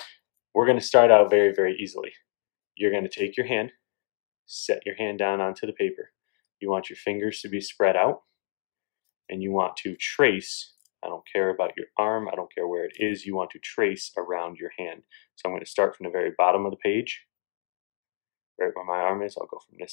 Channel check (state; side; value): silent; right; digital silence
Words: we're going to start out very, very easily. You're going to take your hand, set your hand down onto the paper. You want your fingers to be spread out, and you want to trace. I don't care about your arm, I don't care where it is, you want to trace around your hand. So I'm going to start from the very bottom of the page, right where my arm is. I'll go from